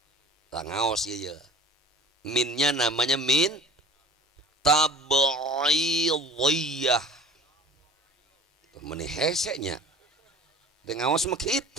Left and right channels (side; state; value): both; normal; correlation 0.44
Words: Tangaos ieu. Minnya namanya min tab'idiyah. Meni hesenya. Dengawas mah